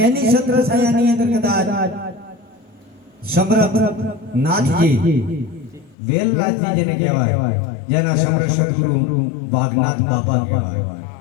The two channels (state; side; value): drops out; right; at 6.0 s